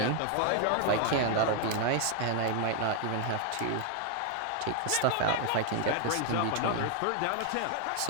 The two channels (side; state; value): both; different; correlation 0.00